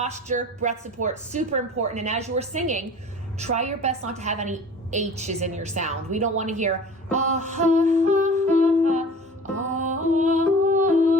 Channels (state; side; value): normal; both; correlation 0.42